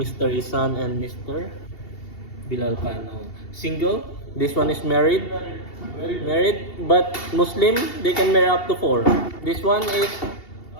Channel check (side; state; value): right; late; 2.7 ms